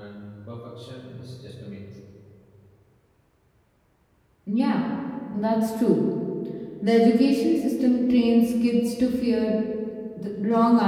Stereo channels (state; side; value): identical; both; correlation 1.00